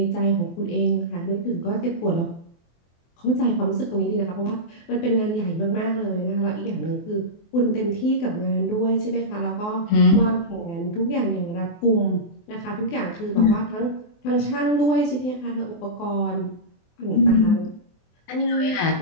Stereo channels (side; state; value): right; late; 24 ms